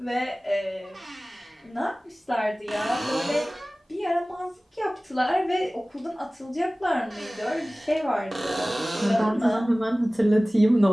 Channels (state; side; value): normal; both; correlation 0.98